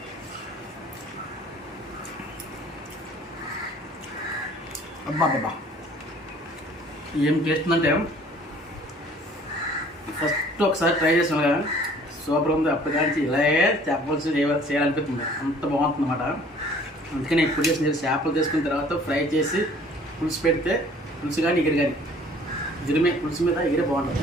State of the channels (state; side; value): normal; both; correlation 0.54